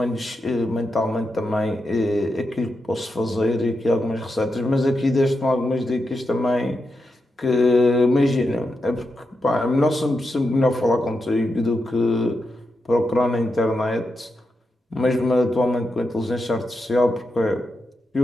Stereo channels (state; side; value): normal; both; correlation 0.86